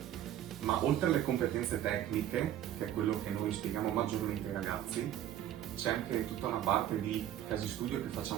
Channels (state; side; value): quieter; left; 11.7 dB